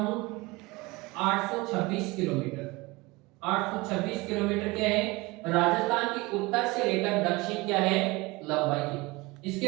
826 किलोमीटर। 826 किलोमीटर क्या है, राजस्थान की उत्तर से लेकर दक्षिण क्या है, लंबाई है।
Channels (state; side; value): quieter; left; 23.1 dB